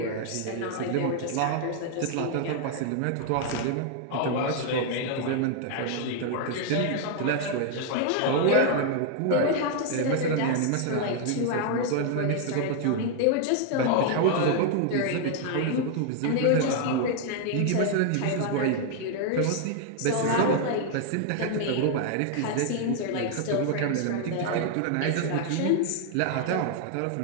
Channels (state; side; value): different; both; correlation 0.00